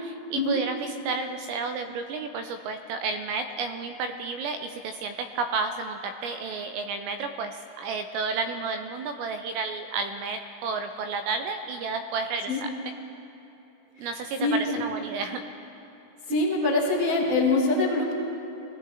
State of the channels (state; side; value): late; left; 21 ms